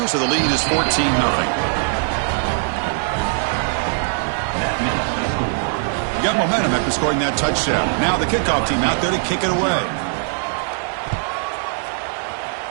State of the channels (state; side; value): silent; left; digital silence